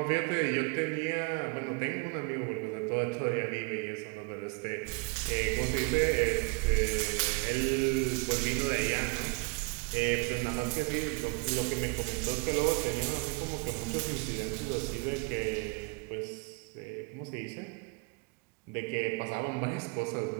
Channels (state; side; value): quieter; left; 31.4 dB